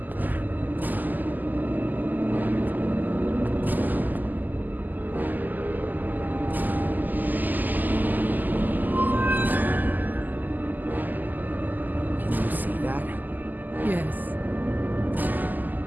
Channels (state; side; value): late; left; 0.085 ms